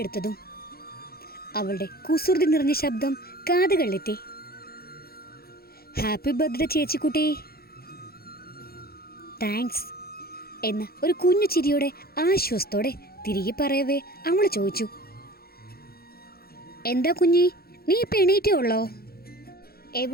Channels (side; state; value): right; late; 0.44 ms